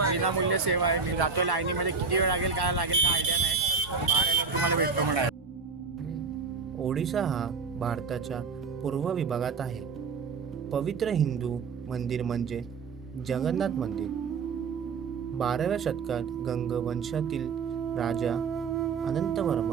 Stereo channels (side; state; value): left; quieter; 5.1 dB